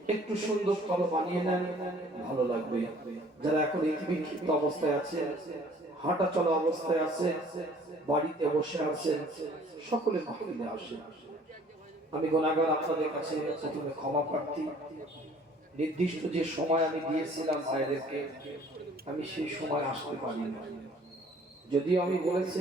একটু সুন্দর করে বানিয়ে নেন, ভালো লাগবে। যারা এখন বিক্ষিপ্ত অবস্থায় আছে, হাঁটা চলা অবস্থায় আছে, বাড়িতে বসে আছেন, সকলে মাহফিলে আসেন। আমি গুনাহগার, আপনাদের কাছে প্রথমে ক্ষমা প্রার্থী। নির্দিষ্ট যে সময় আমি দিয়েছিলাম ভাইদেরকে, আমি সেই সময় আসতে পারিনি। যদিও আমি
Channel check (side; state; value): both; normal; correlation 0.55